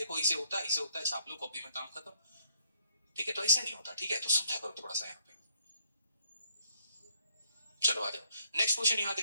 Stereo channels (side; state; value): both; inverted; correlation -0.69